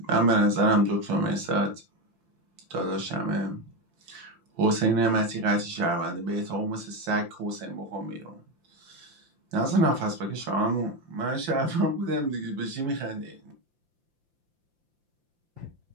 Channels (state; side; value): late; left; 5.8 ms